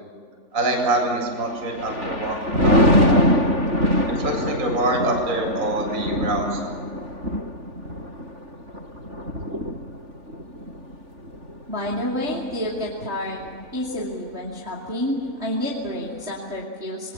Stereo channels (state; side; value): late; left; 3.5 ms